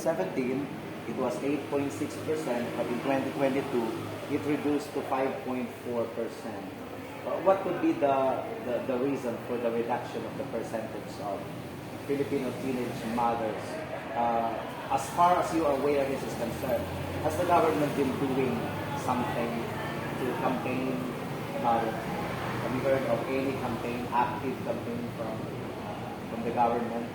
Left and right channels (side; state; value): both; identical; correlation 1.00